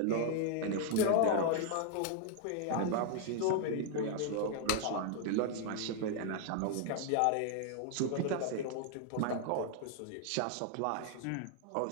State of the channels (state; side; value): different; both; correlation 0.00